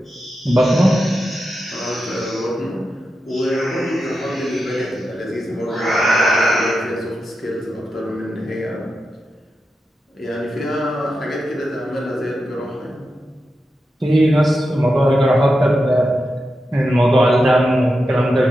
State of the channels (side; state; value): both; normal; correlation 0.89